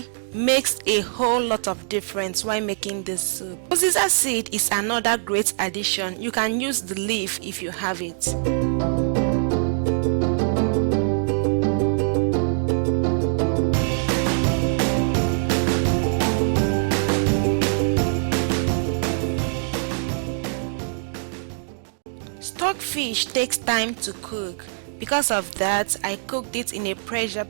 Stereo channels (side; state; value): left; silent; digital silence